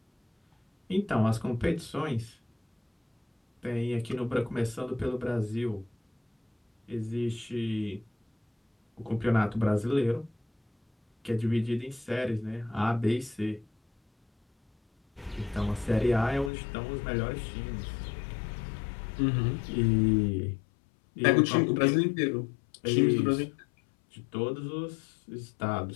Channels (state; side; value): drops out; right; at 16.5 s